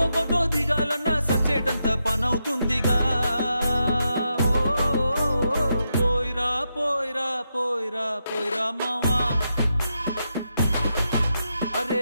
ఫోటో దిగాలన్నా సచ్చేటంత పనవుతుందిగా పోయిరా పోయిరా పోయిరా పోయిరా మావా అరే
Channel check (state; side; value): inverted; both; correlation -0.84